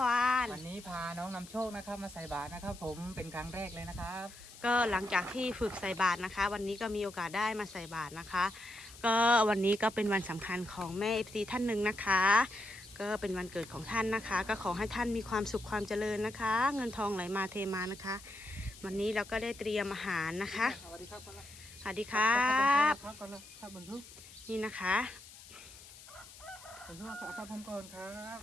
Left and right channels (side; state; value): left; noise; hiss, 18 dB below the sound